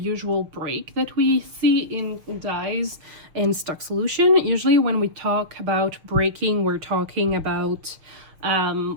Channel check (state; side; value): late; left; 6.3 ms